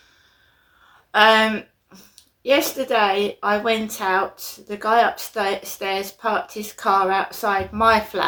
Yesterday I went out. The guy upstairs parked his car outside my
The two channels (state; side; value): identical; both; correlation 1.00